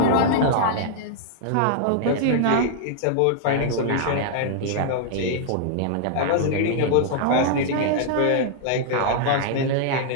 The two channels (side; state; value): both; different; correlation -0.01